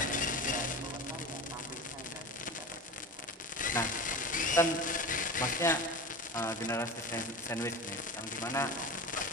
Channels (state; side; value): normal; both; correlation 0.29